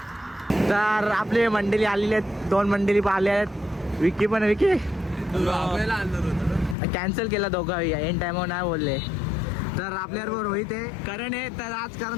तर आपली मंडळी आलेली आहेत, 2 मंडळी आले आहेत. विकी पण, विकी कॅन्सल केला दोघं, एन टायमावर नाही बोलले. तर आपल्याबरोबर रोहित आहे, करण आहे. तर आज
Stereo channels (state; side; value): drops out; right; at 6.8 s